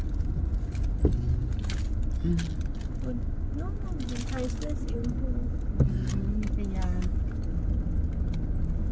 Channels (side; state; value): both; identical; correlation 1.00